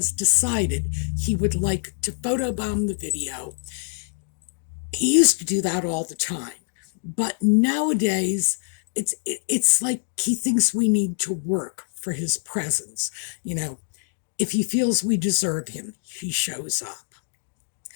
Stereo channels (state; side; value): silent; right; digital silence